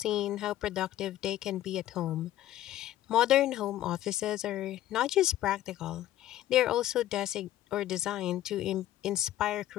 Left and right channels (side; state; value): right; quieter; 13.5 dB